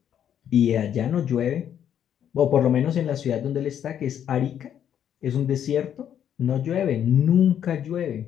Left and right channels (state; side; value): quieter; right; 9.5 dB